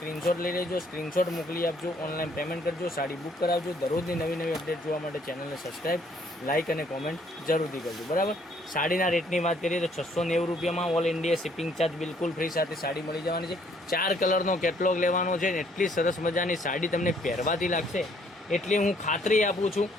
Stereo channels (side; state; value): both; normal; correlation 0.64